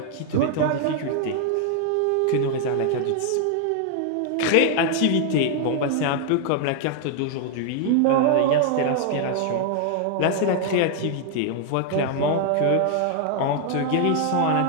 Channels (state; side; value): different; both; correlation 0.00